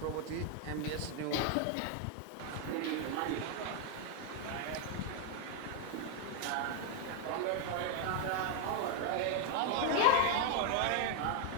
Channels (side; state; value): both; different; correlation 0.01